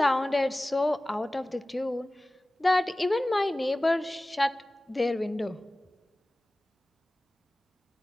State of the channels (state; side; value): normal; both; correlation 0.98